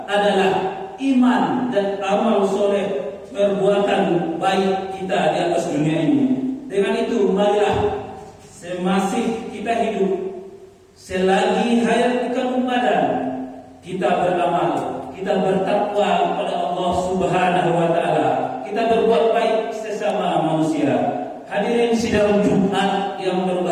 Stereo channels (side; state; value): both; identical; correlation 1.00